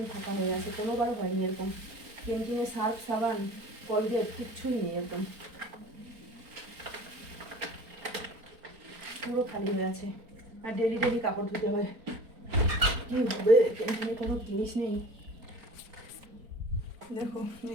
ফাঁকা হয়ে আছে। কোনোবার হয়নি এরকম, ক্যান্টিনে সার্ফ সাবান কলগেট কিচ্ছুই নেই, একদম পুরো খালি হয়ে আছে। আর ডেলি কাপড় ধুতে হয়, কী হবে, ক্যান্টিনে কোনো জিনিস নেই। দেখো,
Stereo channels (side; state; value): left; late; 4.4 ms